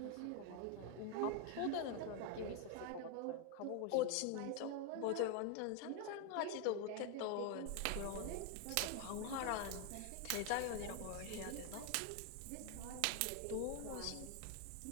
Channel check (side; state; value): both; different; correlation 0.01